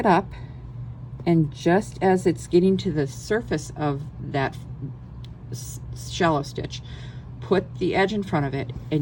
up, and just as it's getting to the surface of that shallow stitch, put the edge in front of it,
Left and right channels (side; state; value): both; identical; correlation 1.00